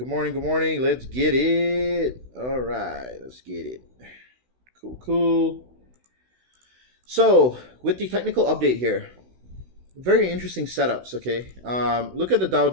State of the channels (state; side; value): late; left; 16 ms